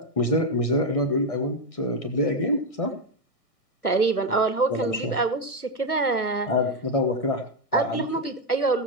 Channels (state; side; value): late; right; 1.6 ms